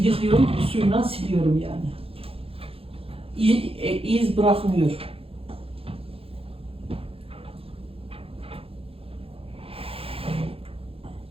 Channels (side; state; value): left; late; 0.27 ms